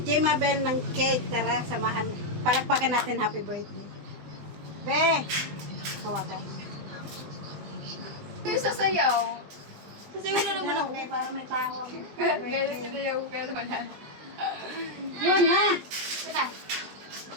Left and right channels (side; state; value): left; late; 20 ms